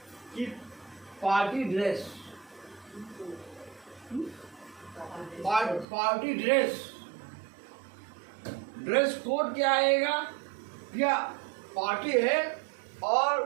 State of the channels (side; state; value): left; drops out; at 5.9 s